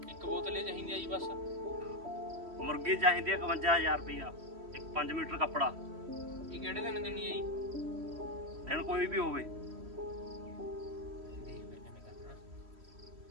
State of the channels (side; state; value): left; late; 3.1 ms